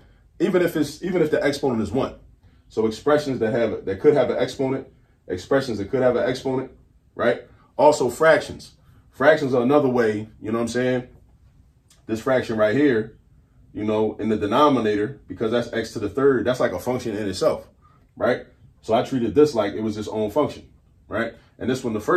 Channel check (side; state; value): both; identical; correlation 1.00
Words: even if the exponent is 1, so expressions that could have an exponent, expressions that could have an exponent, right? Also fractions. Fractions are another way, you know what I'm saying? This fraction right here, you know, in the denominator, because that's x to the third, that's like a function in itself, right? So I treated this like it was its own function, right? And this one, the